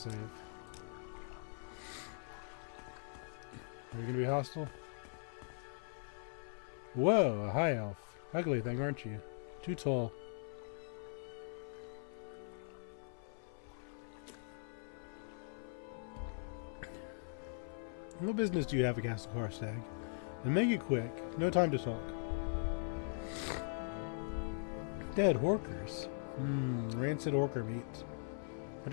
Are you gonna be hostile? Whoa, a high elf. Ugly thing, aren't you? Too tall. What business do you have at Castle Karstag? And make it quick. No time to talk. Dead horkers. Rancid orker meat. But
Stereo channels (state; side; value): silent; right; 51 dB below the other